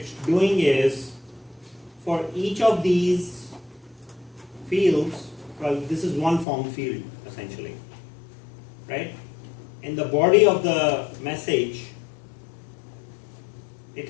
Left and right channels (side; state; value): right; drops out; at 6.5 s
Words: doing is, for each of these fields, well, this is one form field essentially, right? In the body of the message, it